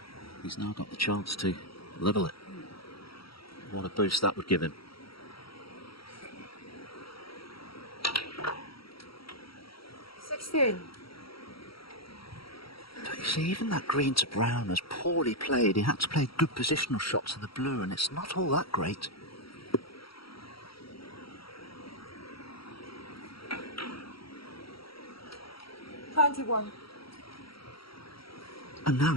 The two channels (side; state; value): right; late; 0.75 ms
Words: he's now got the chance to level it. What a boost that would give him. 16. But you see, even that green to brown was poorly played. He had to play good positional shots to the blue, and it's not all that great. Twenty-one. And now